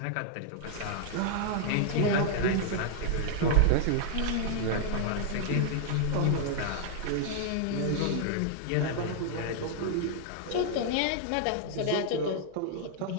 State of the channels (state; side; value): different; both; correlation -0.01